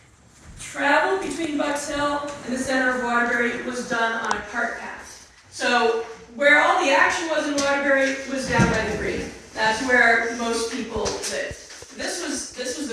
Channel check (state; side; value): identical; both; correlation 1.00